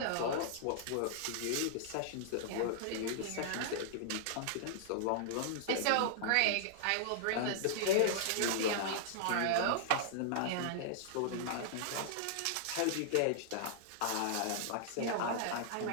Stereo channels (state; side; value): different; both; correlation -0.01